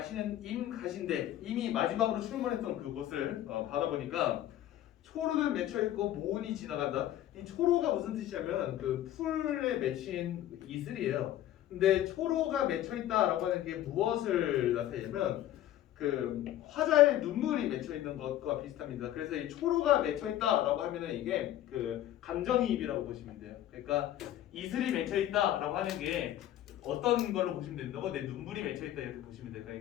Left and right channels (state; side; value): quieter; right; 12.7 dB